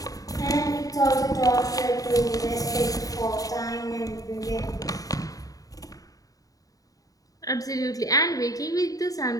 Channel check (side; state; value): right; late; 0.17 ms